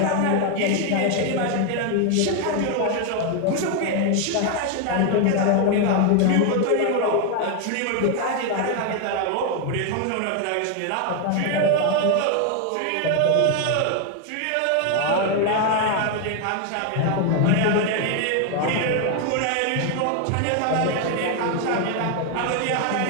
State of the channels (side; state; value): both; different; correlation 0.01